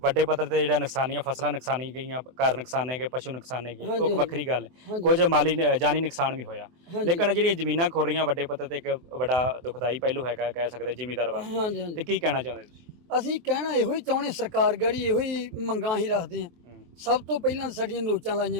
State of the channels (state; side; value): late; left; 24 ms